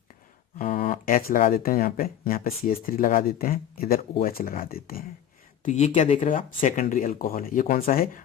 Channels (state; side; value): quieter; right; 10.1 dB